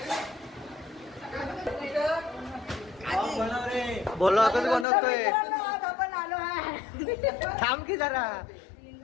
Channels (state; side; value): drops out; right; at 4.9 s